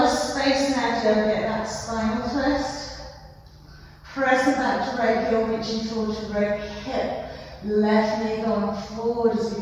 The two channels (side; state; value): both; identical; correlation 1.00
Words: of space now to get that spinal twist. Pressing back to right heel, reaching forward to right hip. Left knee going forward as